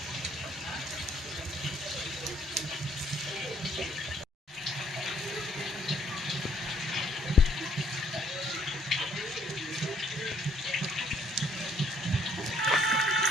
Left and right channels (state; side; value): normal; both; correlation 0.65